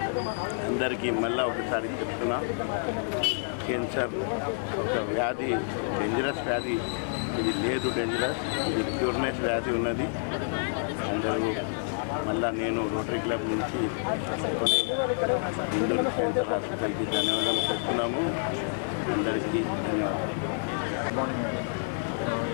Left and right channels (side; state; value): right; silent; 59 dB below the other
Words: అందరికీ మళ్ళీ ఒకసారి చెప్తున్నా, క్యాన్సర్ ఒక వ్యాధి, డేంజరస్ వ్యాధి. ఇది లేదు డేంజరస్, ఇది క్యూర్నెస్ వ్యాధి ఉన్నది. అందరూ మళ్ళీ నేను రోటరీ క్లబ్ నుంచి కొన్ని ఇందూరు క్యాన్సర్ హాస్పిటల్కి ధన్యవాదాలు చెప్తున్నాము. అందరికీ ధన్యవాదాలు.